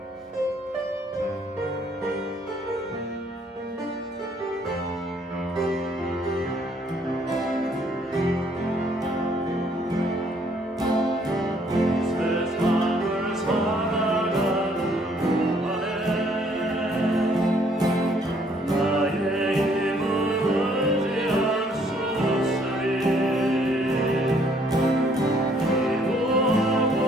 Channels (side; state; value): both; normal; correlation 0.64